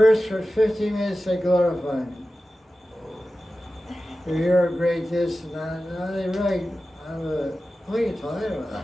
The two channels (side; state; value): both; normal; correlation 0.94